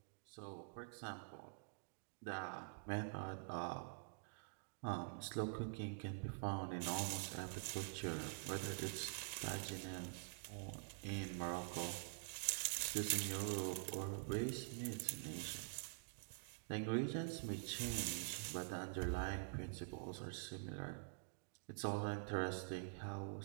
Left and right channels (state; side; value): silent; left; digital silence